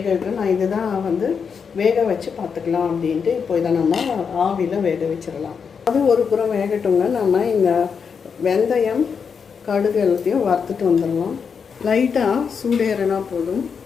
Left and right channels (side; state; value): right; quieter; 6.2 dB